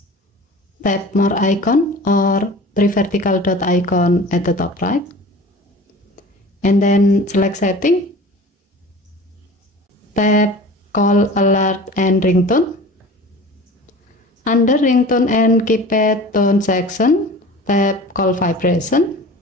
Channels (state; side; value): normal; both; correlation 0.40